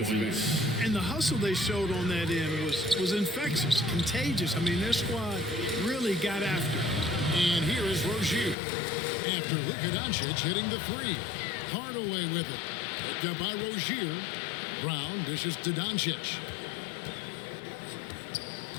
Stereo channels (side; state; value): right; drops out; at 8.6 s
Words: end. And the hustle they showed on that end was infectious, contagious. I mean, their squad really got after it. And here is Rozier. After Luka Doncic hitting the 3. Hardaway with it. Picked up by Rozier. Brown dishes to Doncic.